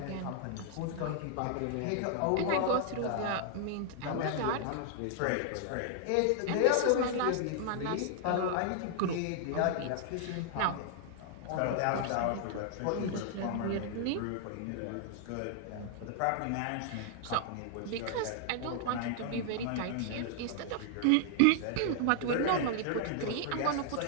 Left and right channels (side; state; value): both; different; correlation 0.00